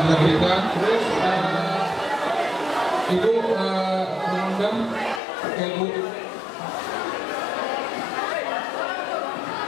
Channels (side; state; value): right; drops out; at 5.2 s